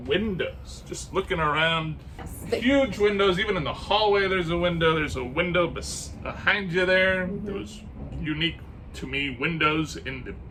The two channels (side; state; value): both; identical; correlation 1.00